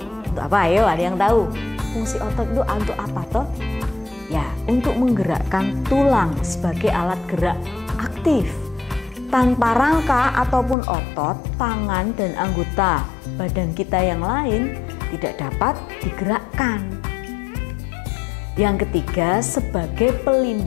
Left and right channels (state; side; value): drops out; right; at 10.8 s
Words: apa? Ayo, ada yang tahu? Fungsi otot itu untuk apa toh? Ya, untuk menggerakkan tulang sebagai alat gerak aktif. Tanpa rangka ataupun otot, tangan dan anggota badan kita yang lain tidak dapat digerakkan. Yang ketiga, sebagai